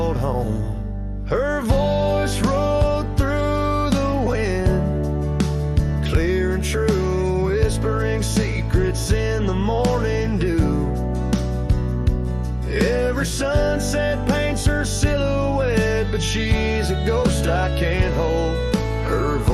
home. Her voice rolled through the wind, clear and true, whispering secrets in the morning dew. Every sunset paints her silhouette, but she's a ghost I can't hold. Her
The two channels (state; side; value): identical; both; correlation 1.00